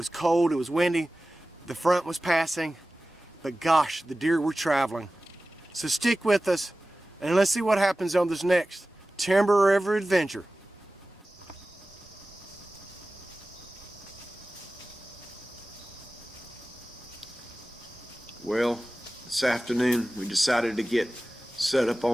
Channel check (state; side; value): normal; both; correlation 0.96